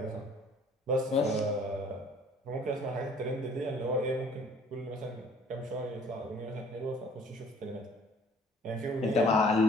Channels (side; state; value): both; normal; correlation 0.54